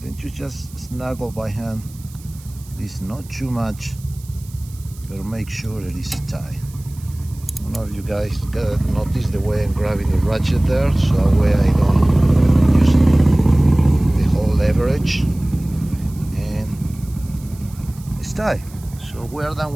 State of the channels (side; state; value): right; noise; hiss, 23 dB below the sound